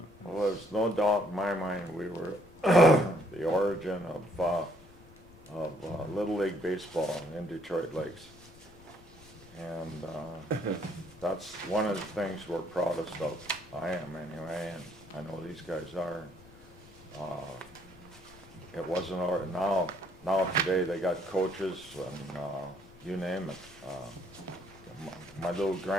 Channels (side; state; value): left; noise; rumble, 22 dB below the sound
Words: well, there's no doubt in my mind we were the origin of Little League Baseball in Detroit Lakes. And that's one of the things we're proudest of. I am anyway, and I know these guys are. It wasn't, now today they got coaches and you name it. My little